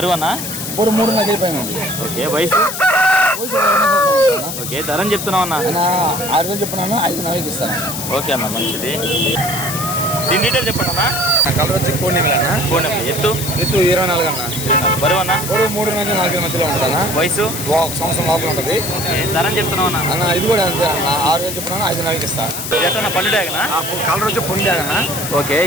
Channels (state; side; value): noise; left; hiss, 6 dB below the sound